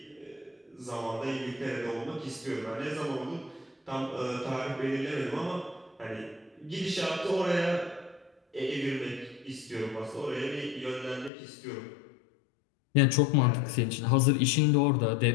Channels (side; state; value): right; drops out; at 11.3 s